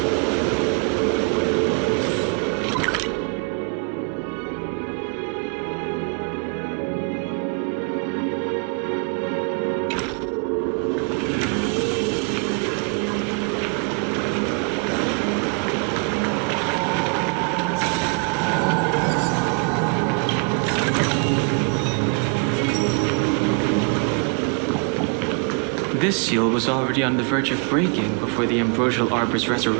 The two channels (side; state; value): left; quieter; 36.8 dB